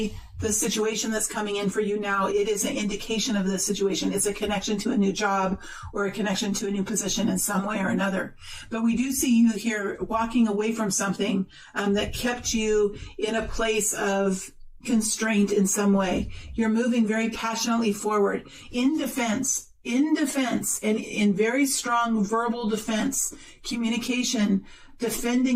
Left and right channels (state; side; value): identical; both; correlation 1.00